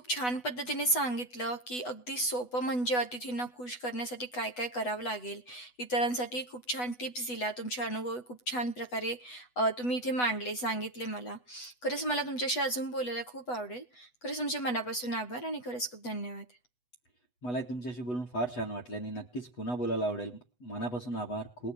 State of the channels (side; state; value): right; late; 8.1 ms